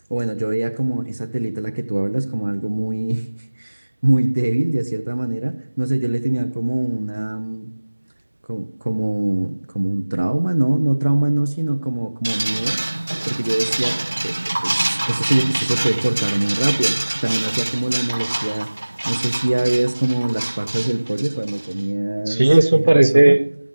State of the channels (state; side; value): inverted; both; correlation -1.00